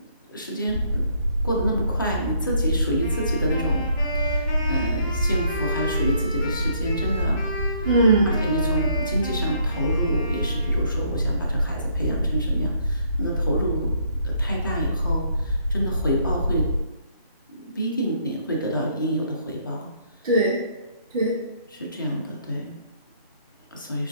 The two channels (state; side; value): inverted; both; correlation -0.67